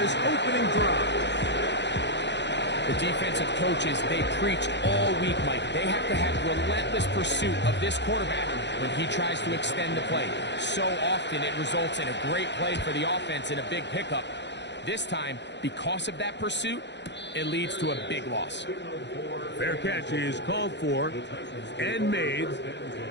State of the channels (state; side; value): late; right; 0.51 ms